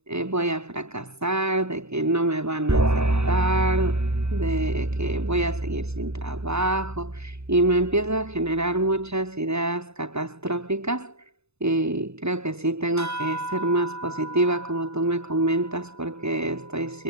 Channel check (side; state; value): left; late; 0.80 ms